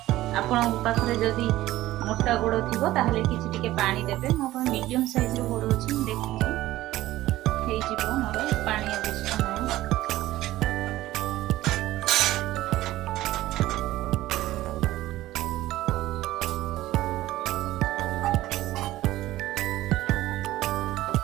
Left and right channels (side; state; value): left; quieter; 15.8 dB